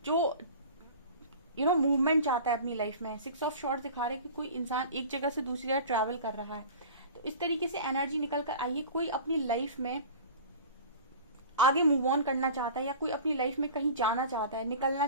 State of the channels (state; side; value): inverted; both; correlation -0.39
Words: जो मूवमेंट चाहता है अपनी लाइफ में। 6 ऑफ शॉर्ट्स दिखा रहे हैं कि कोई इंसान एक जगह से दूसरी जगह ट्रैवल कर रहा है। तो इस तरीके से एनर्जी निकल कर आई है, कोई अपनी लाइफ में आगे मूव ऑन करना चाहता है या कोई अपनी लाइफ में कहीं जाना चाहता है, निकलना